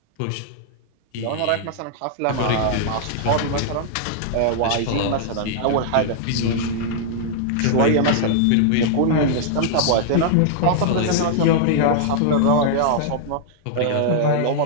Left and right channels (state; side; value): different; both; correlation -0.01